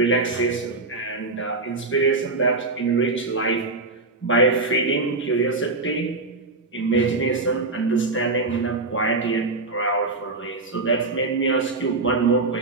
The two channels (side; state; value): left; quieter; 3.4 dB